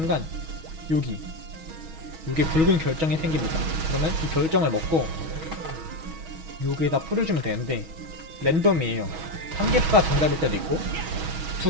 여기 붉은 결정이 생깁니다. 그러면 이 결정을 먹고 여기에다 뿌려주면 되는데 랜덤이에요. 1개가 정답일 때도 있고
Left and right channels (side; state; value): left; late; 6.2 ms